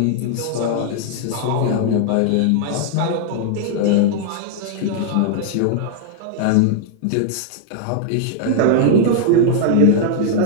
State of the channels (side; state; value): both; different; correlation 0.00